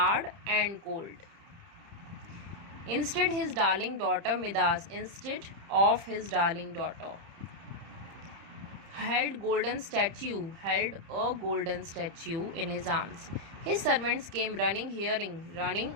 and cold. Instead of his darling daughter held a golden statue in his arms. His servants came running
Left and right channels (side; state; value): left; late; 30 ms